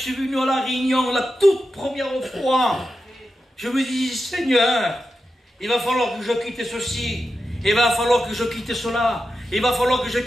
venu à la réunion, la toute première fois, je me dis, Seigneur, il va falloir que je quitte ceci, il va falloir que je quitte cela, il va falloir que je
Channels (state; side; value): normal; both; correlation 0.90